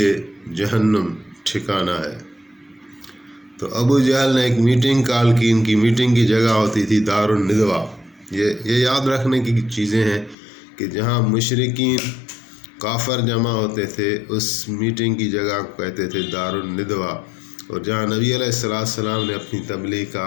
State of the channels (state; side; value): drops out; right; at 10.4 s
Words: جہنم ٹھکانہ ہے۔ تو ابو جہل نے ایک میٹنگ کال کی، ان کی میٹنگ کی جگہ ہوتی تھی دار الندوہ۔ یہ یاد رکھنے کی چیزیں ہیں کہ جہاں مشرکین کافر جمع ہوتے تھے اس میٹنگ کی جگہ کو کہتے تھے دار الندوہ، اور جہاں نبی علیہ السلام نے اپنی تبلیغ کا